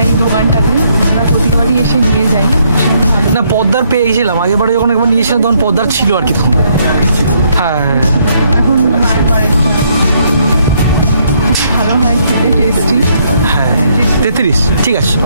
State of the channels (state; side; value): inverted; both; correlation -0.71